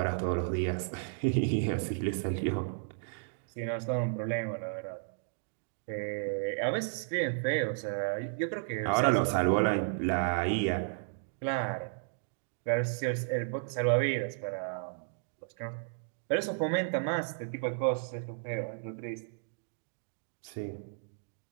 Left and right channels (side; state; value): left; silent; digital silence